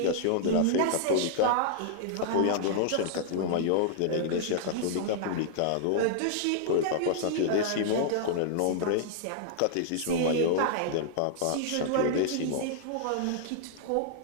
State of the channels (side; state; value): both; different; correlation -0.01